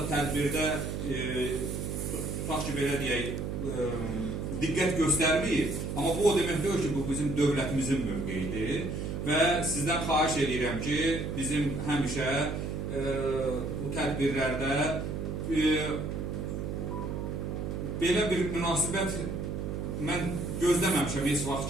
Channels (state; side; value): noise; right; hum, 3 dB below the sound